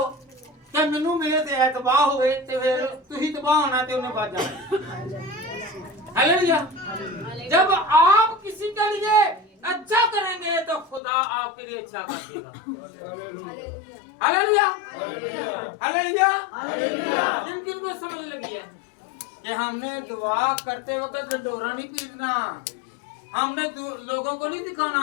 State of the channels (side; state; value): right; drops out; at 11.0 s